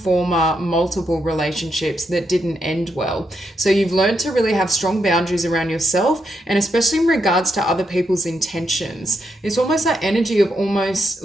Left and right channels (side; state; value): both; normal; correlation 0.81